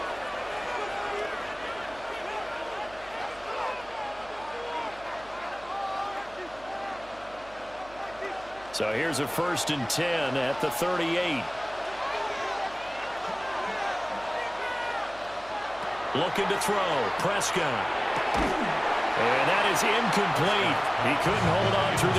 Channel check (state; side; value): noise; right; hum, 22 dB below the sound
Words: So here's a 1st and 10 at the 38. Looking to throw. Prescott. And that is incomplete. He couldn't hold on through